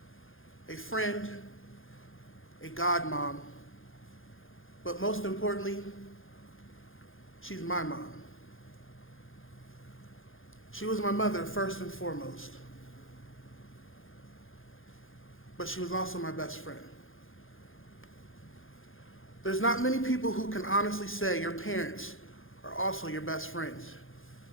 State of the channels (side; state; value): right; late; 0.59 ms